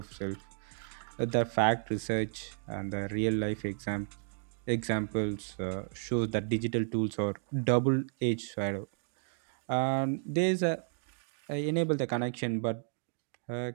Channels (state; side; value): silent; left; 56 dB below the other